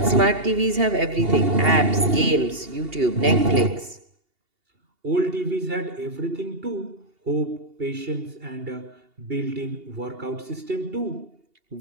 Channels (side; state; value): left; late; 2.8 ms